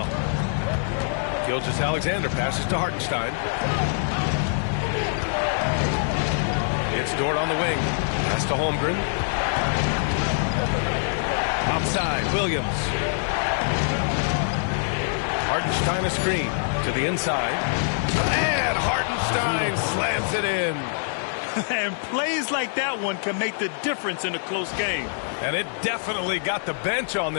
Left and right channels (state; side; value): silent; right; digital silence